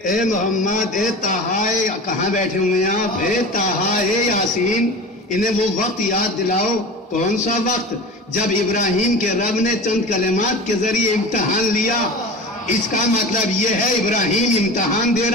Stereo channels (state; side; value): normal; both; correlation 0.33